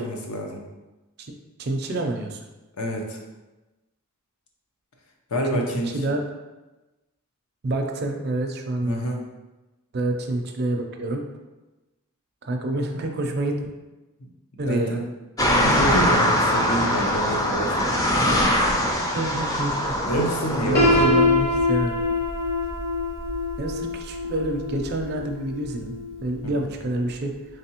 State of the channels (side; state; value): both; normal; correlation 0.15